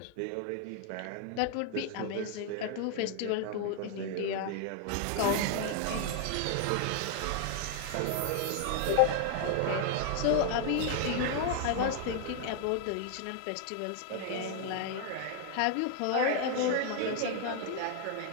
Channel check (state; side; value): different; both; correlation 0.00